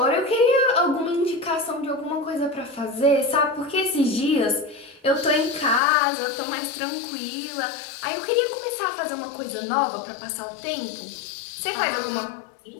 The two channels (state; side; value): drops out; right; at 5.8 s